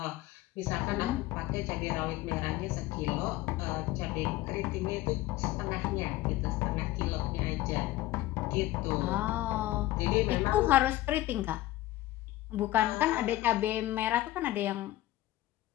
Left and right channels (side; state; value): right; quieter; 16.2 dB